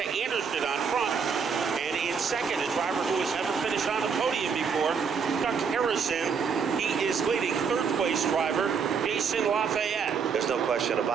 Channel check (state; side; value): quieter; left; 6.1 dB